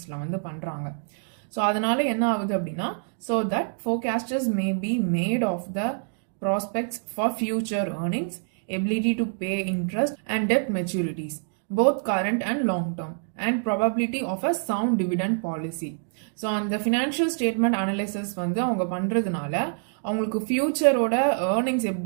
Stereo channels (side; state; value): left; silent; digital silence